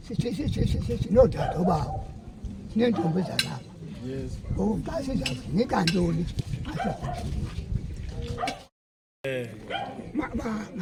sinodade obawo sineentombi zalapha ngoku xa sizawunika ntoni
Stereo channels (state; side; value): identical; both; correlation 1.00